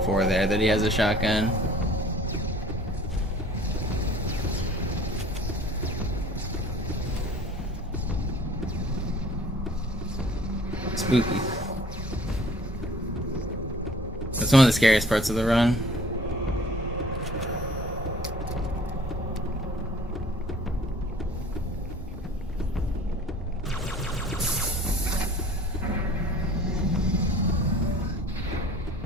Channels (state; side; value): normal; both; correlation 0.50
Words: 4 there that he has a shotgun. Spooky. That's one of the scariest parts of the run.